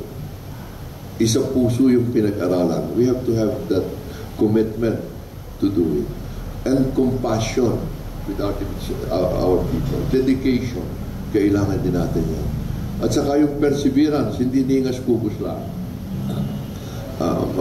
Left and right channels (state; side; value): identical; both; correlation 1.00